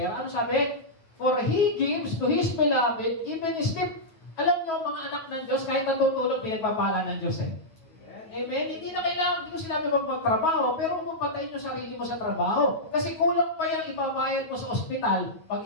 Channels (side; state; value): right; late; 9.2 ms